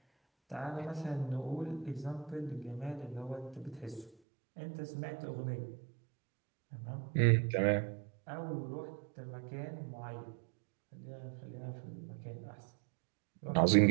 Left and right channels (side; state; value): left; drops out; at 4.1 s